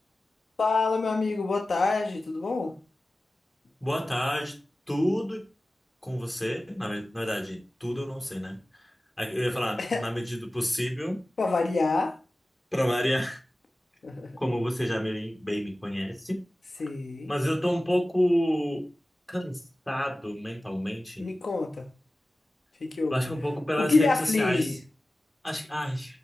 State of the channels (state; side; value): normal; both; correlation 0.96